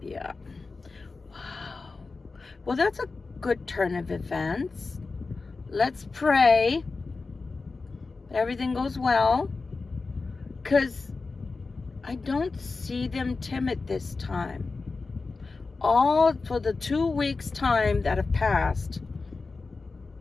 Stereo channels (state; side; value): quieter; right; 4.0 dB